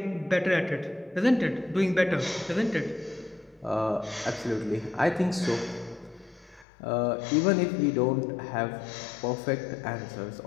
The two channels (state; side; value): drops out; right; at 6.7 s